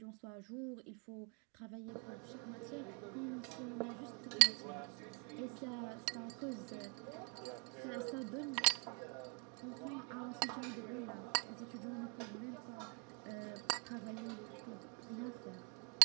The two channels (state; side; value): quieter; left; 32.9 dB